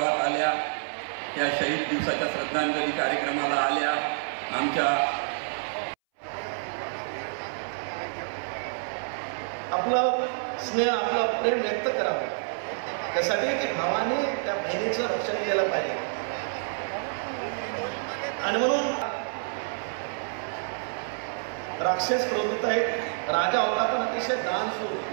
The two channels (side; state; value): left; silent; 59 dB below the other